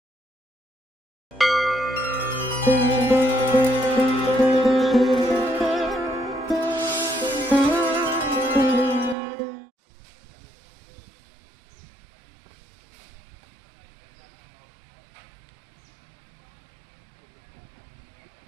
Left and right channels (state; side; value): drops out; left; at 9.2 s